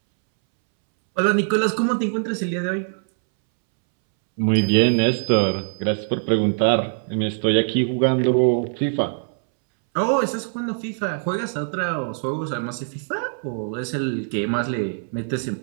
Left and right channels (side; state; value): left; silent; 64 dB below the other